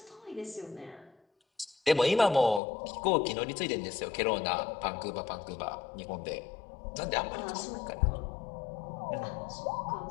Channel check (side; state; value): right; drops out; at 2.6 s